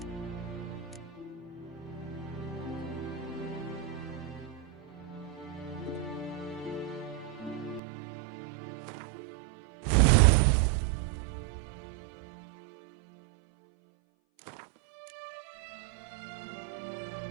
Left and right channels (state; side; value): drops out; left; at 7.8 s